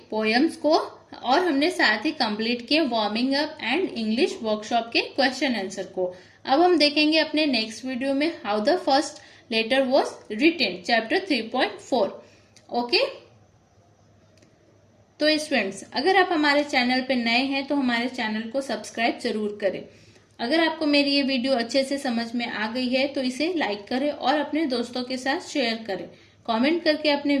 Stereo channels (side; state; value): both; identical; correlation 1.00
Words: पोएम्स को और हमने साथ ही कंप्लीट किए warming up and English workshop के क्वेश्चन आंसर को। अब हम देखेंगे अपने नेक्स्ट वीडियो में how the first letter was written, chapter 3.4। Okay, तो स्टूडेंट्स अगर आप हमारे चैनल पे नए हैं तो हमारे चैनल को सब्सक्राइब जरूर करें। अगर आपको मेरी ये वीडियो अच्छे से समझ में आ गई है तो इसे लाइक करें और अपने दोस्तों के साथ शेयर करें। कमेंट करके अपने